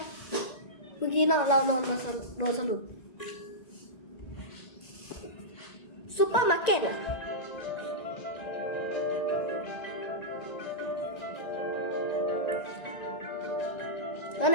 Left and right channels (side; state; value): right; late; 1.9 ms